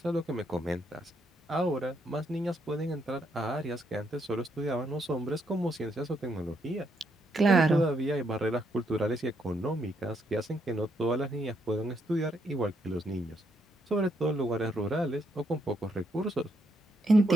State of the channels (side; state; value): both; normal; correlation 0.76